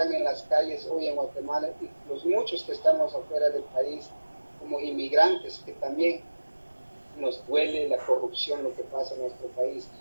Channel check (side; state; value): both; inverted; correlation -1.00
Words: en las calles hoy en Guatemala, y los muchos que estamos afuera del país como inmigrantes, que también nos duele la corrupción, lo que pasa en nuestro país.